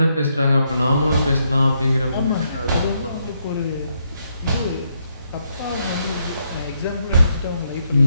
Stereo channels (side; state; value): both; inverted; correlation -0.77